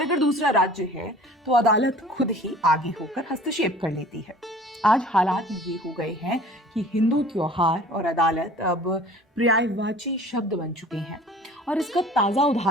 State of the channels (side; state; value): both; normal; correlation 0.47